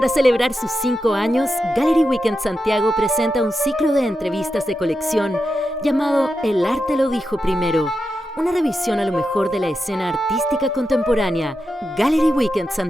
celebrar sus 5 años, Gallery Weekend Santiago presenta un ciclo de entrevistas de colección llamado El arte lo dijo primero, una revisión a lo mejor de la escena artística contemporánea. Gallery Weekend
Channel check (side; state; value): both; normal; correlation 0.89